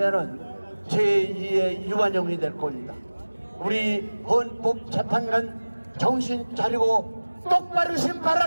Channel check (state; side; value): inverted; both; correlation -1.00